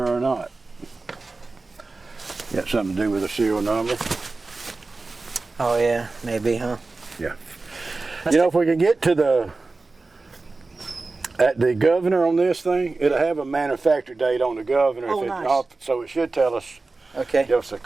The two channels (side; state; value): left; quieter; 3.6 dB